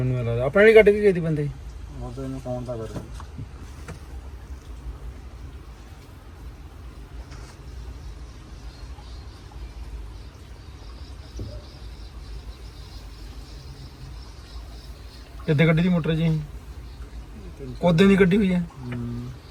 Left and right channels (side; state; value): both; identical; correlation 1.00